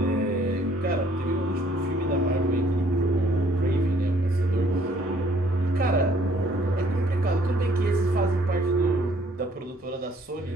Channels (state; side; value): normal; both; correlation 0.62